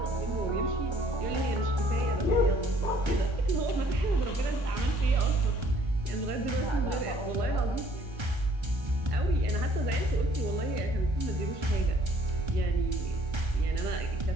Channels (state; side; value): late; left; 1.3 ms